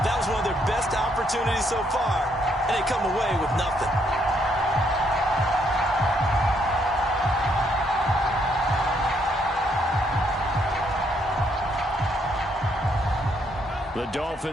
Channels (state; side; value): normal; both; correlation 0.72